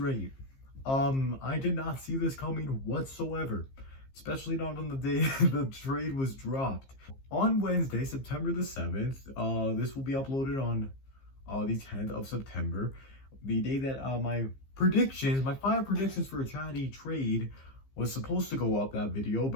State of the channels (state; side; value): late; right; 15 ms